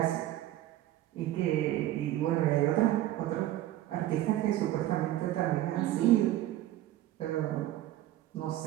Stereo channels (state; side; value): quieter; left; 14.1 dB